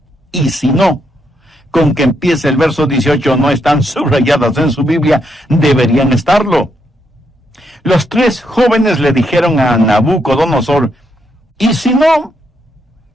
"y si no", con que empieza el verso 18, no están subrayadas en su Biblia, deberían estarlo. Los tres jóvenes le dijeron a Nabucodonosor: y si no,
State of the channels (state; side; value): normal; both; correlation 0.78